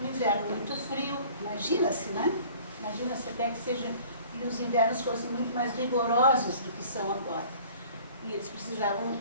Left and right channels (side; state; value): both; inverted; correlation -0.49